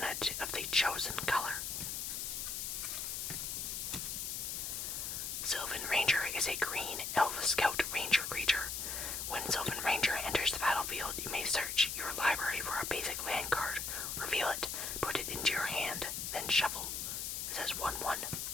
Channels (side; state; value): left; noise; hiss, 3 dB below the sound